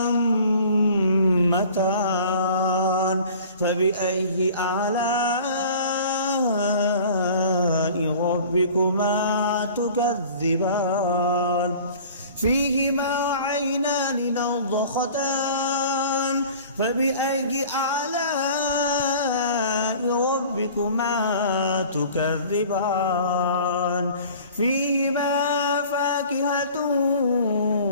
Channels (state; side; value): inverted; both; correlation -0.45